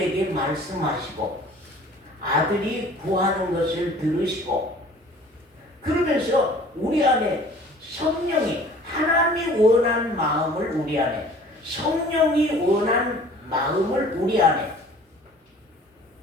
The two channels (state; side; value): normal; both; correlation 0.49